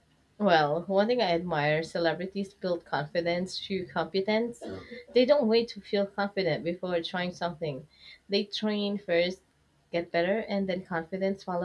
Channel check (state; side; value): identical; both; correlation 1.00